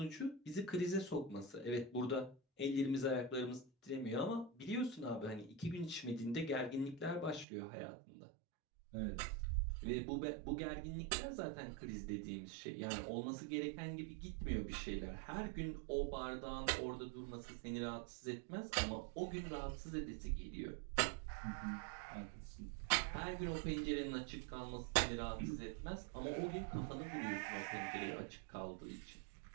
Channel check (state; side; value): drops out; left; at 7.5 s